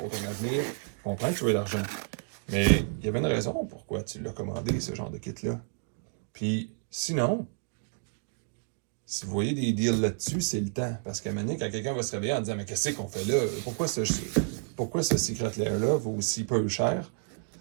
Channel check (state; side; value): silent; left; 58 dB below the other